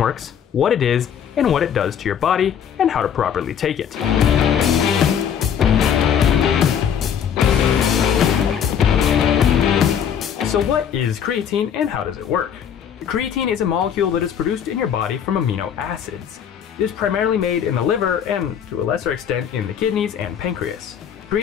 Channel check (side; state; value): right; quieter; 8.4 dB